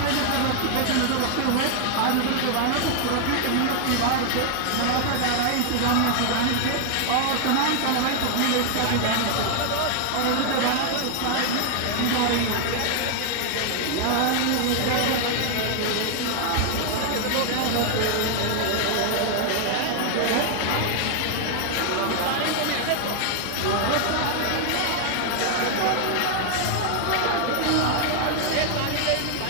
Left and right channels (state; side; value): different; both; correlation 0.00